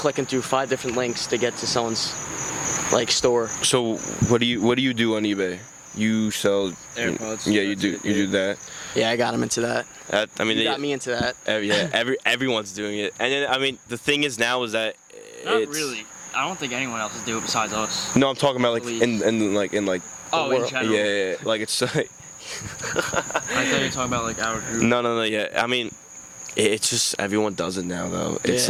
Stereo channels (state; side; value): identical; both; correlation 1.00